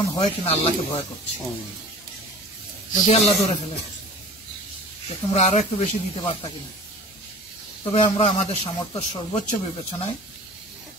হয় কিনা আল্লাহকে ভয় করছি। যদি আল্লাহ ধরে ফেলে তো তোমরা আরো একটু বেশি দিতে পারতা কিনা। তবে আমরা আমাদের সামর্থ্য সর্বোচ্চ বিবেচনায়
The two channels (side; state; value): both; normal; correlation 0.42